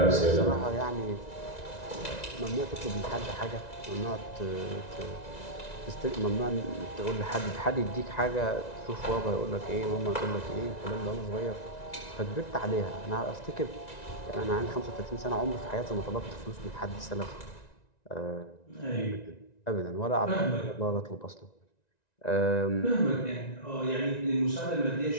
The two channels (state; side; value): late; right; 1.9 ms